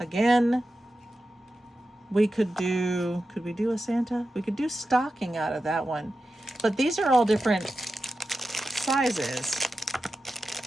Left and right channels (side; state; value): both; normal; correlation 0.92